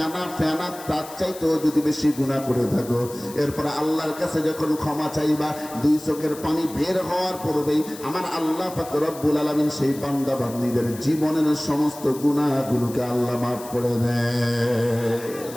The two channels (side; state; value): left; noise; hiss, 16 dB below the sound